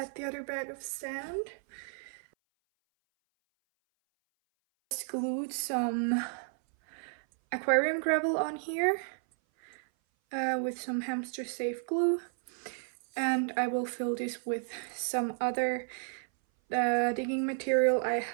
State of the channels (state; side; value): silent; left; 56 dB below the other